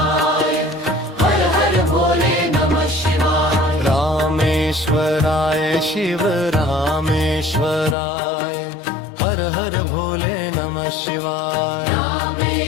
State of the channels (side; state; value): right; drops out; at 8.0 s